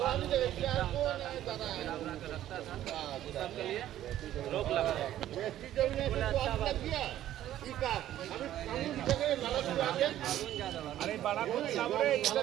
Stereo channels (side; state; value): left; quieter; 12.6 dB